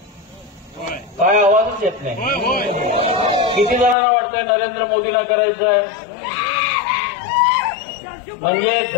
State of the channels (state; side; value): drops out; right; at 4.0 s